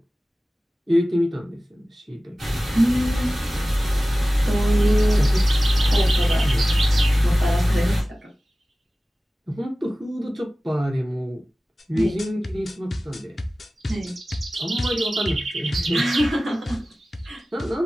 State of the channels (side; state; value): both; normal; correlation 0.96